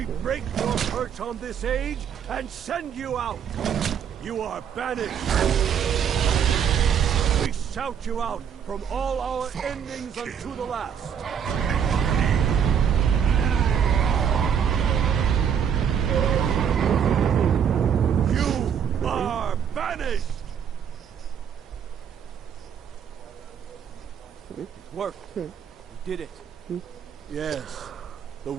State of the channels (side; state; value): left; quieter; 7.9 dB